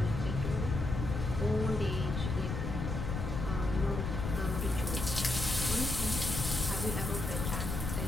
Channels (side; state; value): left; noise; rumble, 3 dB below the sound